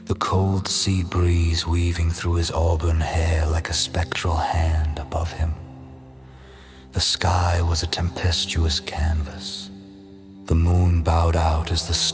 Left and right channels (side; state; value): both; identical; correlation 1.00